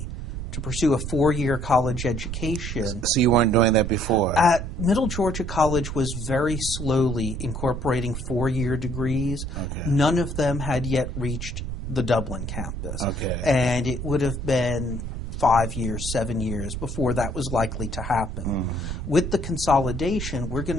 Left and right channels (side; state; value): right; noise; rumble, 5 dB below the sound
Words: to pursue a 4-year college education. So you weren't doing that before? At Middle Georgia College was very slowly incorporating 4-year degrees. Okay. None of them had yet reached the Dublin campus. Okay. And it would have been 5 years, 7 years before that was likely to happen. Mm-hmm. With the consolidation, we're going